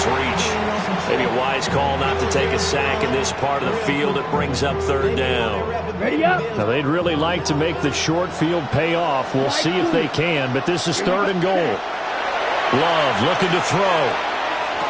reach. Maybe a wise call not to take a sack in this part of the field. It brings up 3rd down. Ready up. Now, they'd really like to make the short field pay off. We'll see if they can, but this is 3rd and goal. Love looking to throw.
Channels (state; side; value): identical; both; correlation 1.00